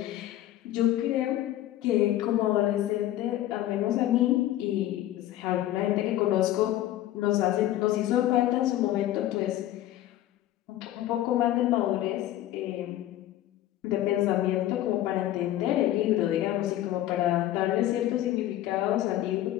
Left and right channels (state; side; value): quieter; right; 13.7 dB